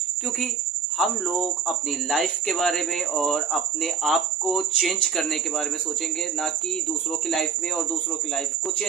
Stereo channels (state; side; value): quieter; left; 6.2 dB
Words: क्योंकि हम लोग अपनी लाइफ के बारे में और अपने आप को चेंज करने के बारे में सोचेंगे, ना कि दूसरों की लाइफ में और दूसरों की लाइफ को